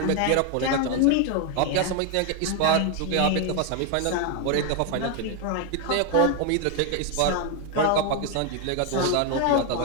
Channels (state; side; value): different; both; correlation 0.01